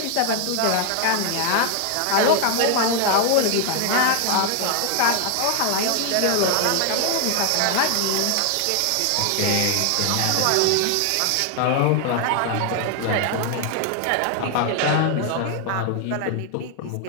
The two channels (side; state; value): both; different; correlation 0.00